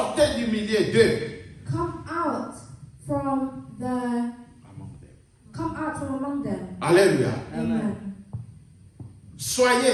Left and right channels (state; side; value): identical; both; correlation 1.00